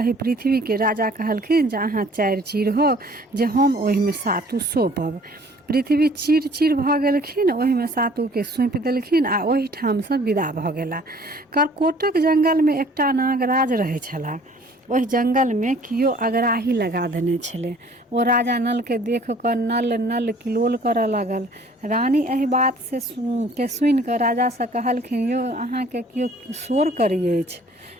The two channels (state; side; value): normal; both; correlation 0.54